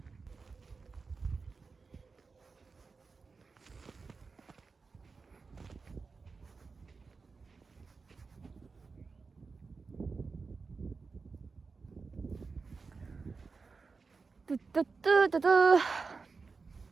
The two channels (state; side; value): quieter; left; 4.5 dB